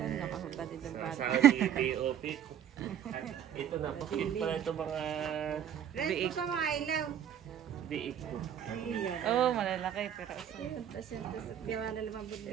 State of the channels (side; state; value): left; quieter; 9.6 dB